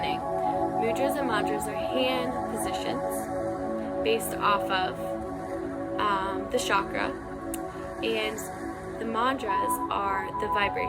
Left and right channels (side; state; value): both; identical; correlation 1.00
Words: Mudras and madras are hand positions based off of the chakra, and the mantras are the